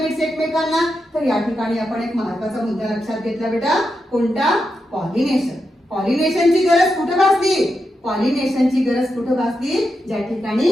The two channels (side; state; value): both; normal; correlation 0.87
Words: एकमेकांना? तर या ठिकाणी आपण एक महत्त्वाचा मुद्दा लक्षात घेतला बेटा. कोणता? पॉलिनेशन. पॉलिनेशनची गरज कुठे भासली? पॉलिनेशनची गरज कुठे भासली? ज्या ठिकाणी